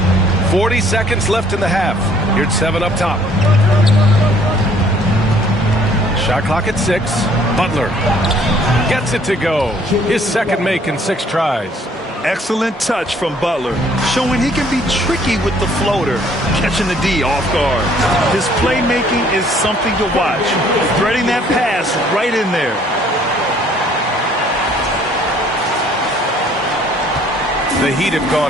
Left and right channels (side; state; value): both; normal; correlation 0.60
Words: 40 seconds left in the half. Here's 7 up top. Shot clock at 6. Butler gets it to go. His second make in 6 tries. Excellent touch from Butler, showing he can be tricky with the floater, catching the D off guard. His playmaking is something to watch. Threading that pass right in there. The Heat have